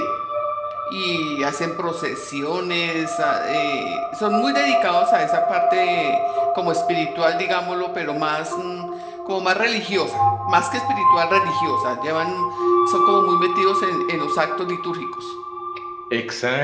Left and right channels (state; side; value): identical; both; correlation 1.00